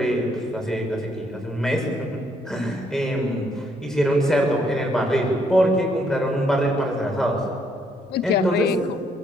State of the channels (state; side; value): normal; both; correlation 0.71